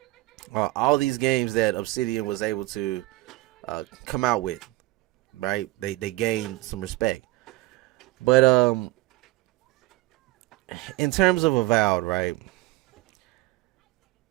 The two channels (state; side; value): quieter; left; 20.3 dB